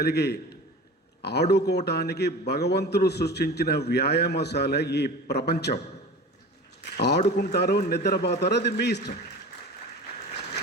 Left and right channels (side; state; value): both; normal; correlation 0.36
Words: ఆడుకోవటానికి భగవంతుడు సృష్టించిన వ్యాయామశాల ఈ ప్రపంచం. ఆడుకుంటారో నిద్రపోతారో అది మీ ఇష్టం.